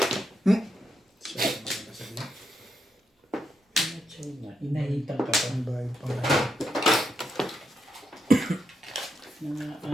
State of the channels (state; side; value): normal; both; correlation 0.82